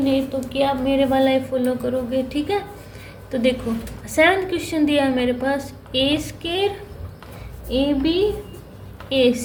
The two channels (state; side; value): identical; both; correlation 1.00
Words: तो कि आप मेरे वाला ही फॉलो करोगे। ठीक है, तो देखो 7th क्वेश्चन दिया है मेरे पास, a square a b a